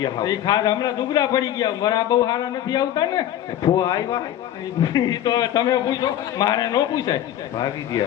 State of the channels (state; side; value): quieter; right; 11.9 dB